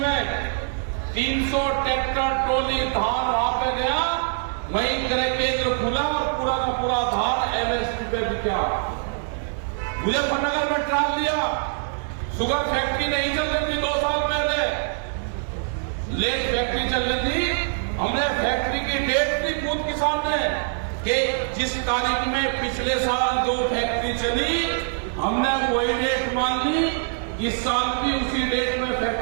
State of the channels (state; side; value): silent; left; digital silence